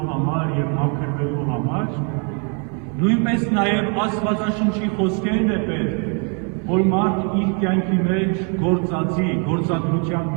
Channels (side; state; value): left; quieter; 37.6 dB